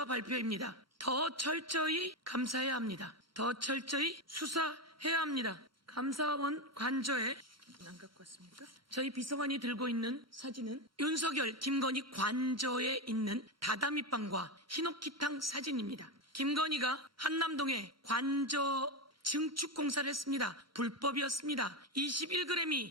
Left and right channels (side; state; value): both; normal; correlation 0.13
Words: 발표입니다. 더 철저히 감사해야 합니다. 더 철저히 수사해야 합니다. 감사원 관저에 안 갖고 왔습니까? 저희 비서관이 들고 있는 사진은 윤석열, 김건희 관저에 있는 다다미빵과 히노키탕 사진입니다. 김건희가 한남동에 관저 증축 공사를 했습니다. 불법이었습니다.